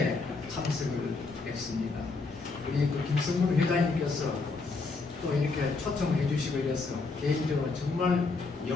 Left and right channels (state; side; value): quieter; right; 4.0 dB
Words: 참석을 했습니다. 우리 김성문 회장님께서 또 이렇게 초청해 주시고 이래서 개인적으로 정말